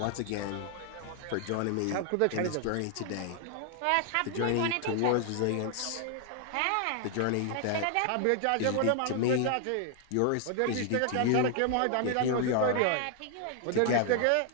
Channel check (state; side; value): different; both; correlation 0.00